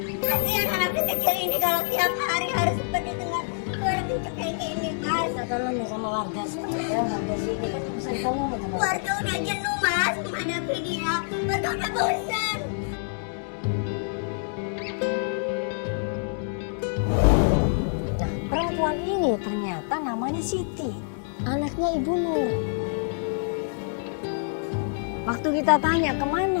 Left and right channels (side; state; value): right; silent; digital silence